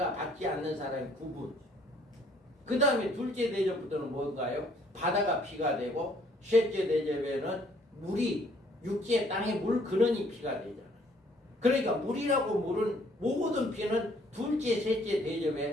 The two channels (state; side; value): normal; both; correlation 0.62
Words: 받지 않는 사람의 구분. 그 다음에 둘째 대접부터는 뭔가요? 바다가 피가 되고 셋째 대접에는 물이 육지의 땅에 물 근원이 피가 되잖아. 그러니까 물이라고 물은 모든 피는 둘째 셋째